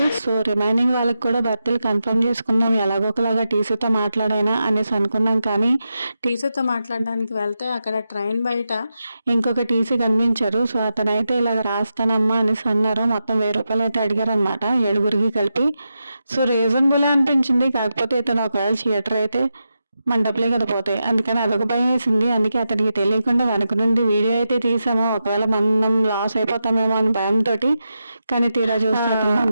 సో రిమైనింగ్ వాళ్ళకి కూడా బర్త్లు కన్ఫర్మ్ చేసుకుందాం, ఎలాగోకలాగా టీసీతో మాట్లాడైనా అనేసి అనుకున్నాం. కానీ టీసీతో మాట్లాడడానికి వెళ్తే అక్కడ ట్రైన్ బయట ఇంకొక టీసీ కనిపించారు. సో అతనైతే ఇలాగ రాస్తానమ్మా అనేసి అన్నారు. మొత్తం 1000 రూపాయలు అయితే అడిగారు అనమాట, 7గురికి కలిపి. సో రీజనబులే అనిపించింది. కాకపోతే ఇతను ఒకవేళ థియేటర్ అయితే మన డబ్బులే కదా పోతాయి, అందుకని అదొక భయం వేసింది. అందుకే అతనికి తెలియకుండా వెనక నుండి వీడియో అయితే తీసాము, ఒకవేళ మనం లాస్ అయిపోతామేమో అని భయంతో. కానీ తీరా చూస్తే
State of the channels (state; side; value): inverted; both; correlation -0.88